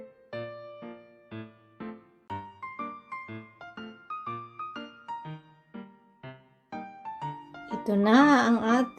Ito na ang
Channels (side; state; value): both; identical; correlation 1.00